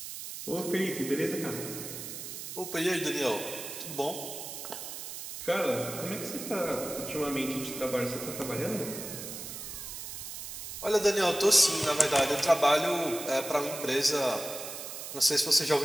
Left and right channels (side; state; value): right; noise; hiss, 9 dB below the sound